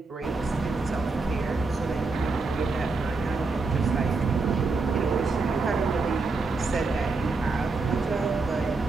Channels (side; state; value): left; quieter; 3.9 dB